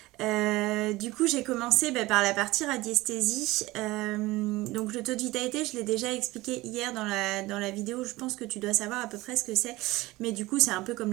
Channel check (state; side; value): quieter; left; 19.6 dB